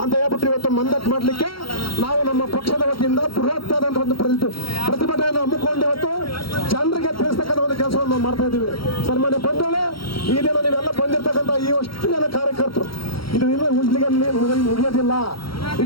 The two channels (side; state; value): right; late; 0.74 ms